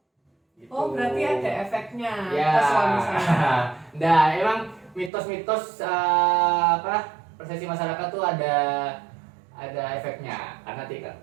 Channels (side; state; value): left; drops out; at 5.1 s